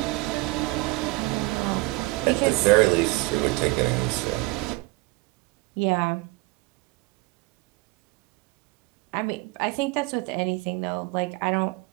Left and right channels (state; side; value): quieter; left; 23.1 dB